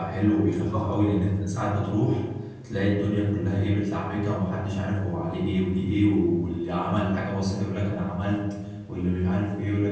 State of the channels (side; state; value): both; identical; correlation 1.00